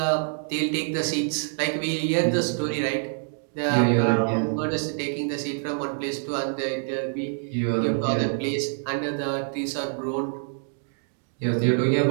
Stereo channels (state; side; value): silent; left; 61 dB below the other